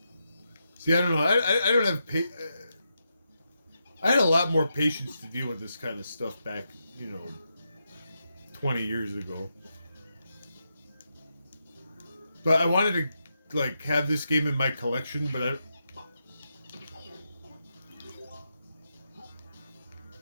See, I don't know. I don't have I had a lot more patience to deal with this kind of stuff back, 20 years ago. But I wanted to, have this game in my collection, but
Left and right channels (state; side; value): inverted; both; correlation -0.85